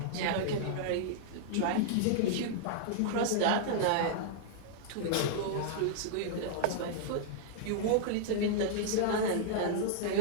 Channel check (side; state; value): both; different; correlation -0.01